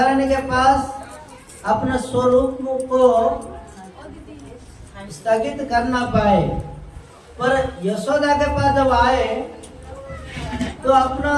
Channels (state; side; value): identical; both; correlation 1.00